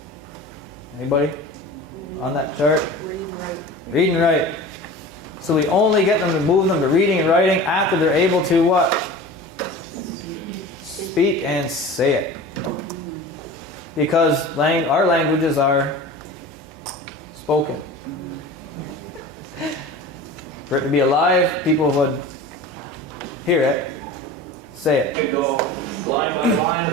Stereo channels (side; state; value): both; normal; correlation 0.36